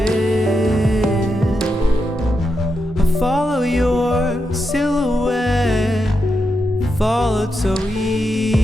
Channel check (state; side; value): normal; both; correlation 0.86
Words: I follow your silhouette, followed so